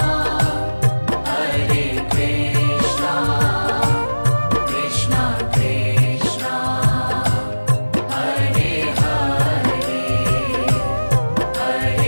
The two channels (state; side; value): inverted; both; correlation -1.00